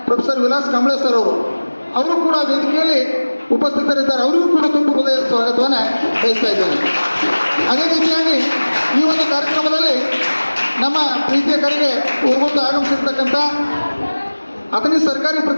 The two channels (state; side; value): inverted; both; correlation -1.00